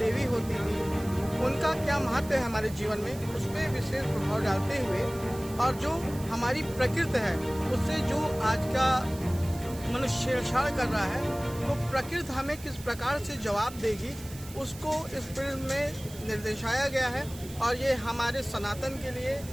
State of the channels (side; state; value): right; noise; hiss, 17 dB below the sound